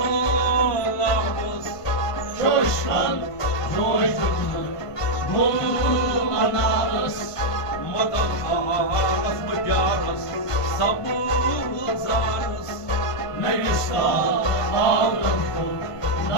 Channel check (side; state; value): right; late; 1.5 ms